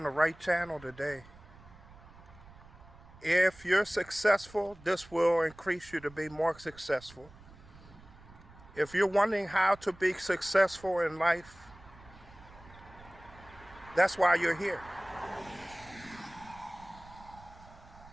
the right channel today. If you're successful, this will increase you to be more successful. If you're wondering how to be successful in life, that's why you're here.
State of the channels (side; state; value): right; noise; rumble, 21 dB below the sound